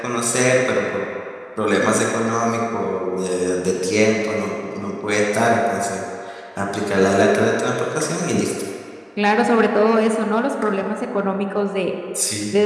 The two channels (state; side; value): identical; both; correlation 1.00